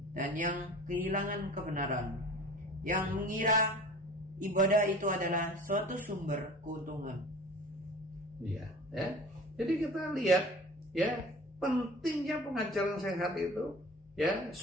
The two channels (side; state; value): both; normal; correlation 0.41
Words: dan yang kehilangan kebenaran, yang mengira ibadah itu adalah suatu sumber keuntungan. Iya, ya. Jadi kita lihat ya pentingnya pengajaran sehat itu ya